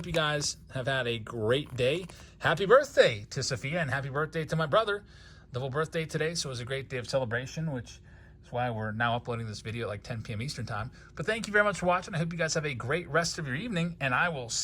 you guys have had a great day. Happy birthday to Sophia and happy birthday to my brother. Double birthday today, so it was a great day of celebration, which is why we're now uploading this video at like 10 p.m. Eastern time. But thank you very much for watching. I hope you guys have a great rest of your evening, and I will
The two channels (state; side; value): identical; both; correlation 1.00